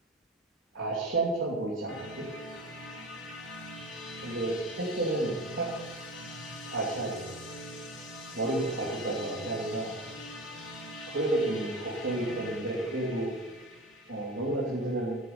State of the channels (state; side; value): normal; both; correlation 0.32